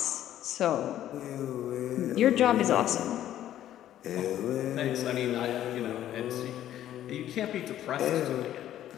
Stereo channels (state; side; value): quieter; right; 12.1 dB